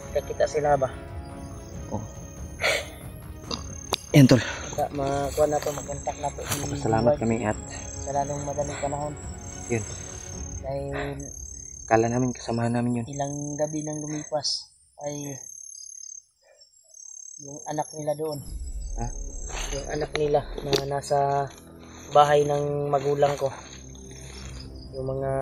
kakita sila ba. Oh. Yan tol. Makuha na to, makontak na to. Salamat kami at sa lalong madaling panahon. yun. Dahil Kala namin kasamahan namin yun. ilang gabi nang lumipas ay yung anak nila doon. Ha? Yung anak nila na nasa bahay ng magulang ko. Yung mga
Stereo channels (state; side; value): identical; both; correlation 1.00